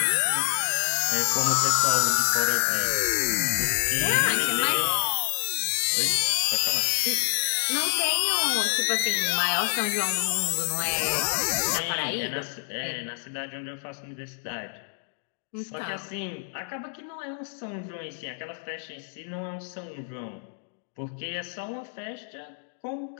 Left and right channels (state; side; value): silent; right; 60 dB below the other